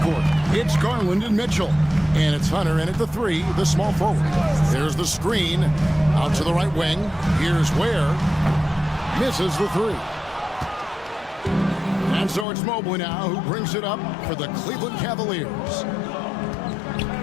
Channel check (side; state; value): right; drops out; at 12.5 s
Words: It's Garland and Mitchell. And it's Hunter in at the three, the small forward. There's the screen. Out to the right wing. Here's Ware. Misses the three. And so it's Mobley now who brings it up for the Cleveland Cavaliers.